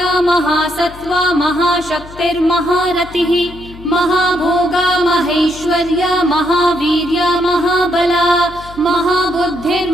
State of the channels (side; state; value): left; noise; hum, 18 dB below the sound